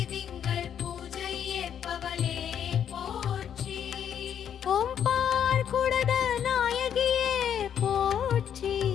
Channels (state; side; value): quieter; right; 8.9 dB